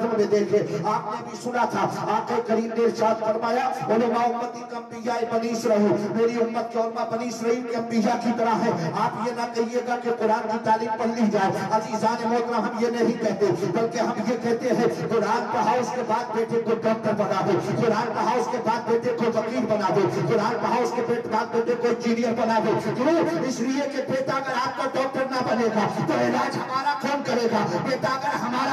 میں دیکھیں، آپ نے بھی سنا تھا آقا کریم نے ارشاد فرمایا علماء امتی کا انبیاء بنی اسرائیل، میری امت کے علماء بنی اسرائیل کے انبیاء کی طرح ہے۔ آپ یہ نہ کہیے گا کہ قرآن کی تعلیم پڑھ لی جائے، عزیزان محترم ہم یہ نہیں کہتے، بلکہ ہم یہ کہتے ہیں قرآن پڑھاؤ اس کے بعد بیٹے کو ڈاکٹر بنا دو، قرآن پڑھاؤ اس کے بعد بیٹے کو وکیل بنا دو، قرآن پڑھاؤ اس کے بعد بیٹے کو انجینئر بنا دو۔ کیوں؟ اس لیے کہ بیٹا اگر آپ کا ڈاکٹر نہ بنے گا تو علاج ہمارا کون کرے گا؟ بیٹا اگر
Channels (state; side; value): identical; both; correlation 1.00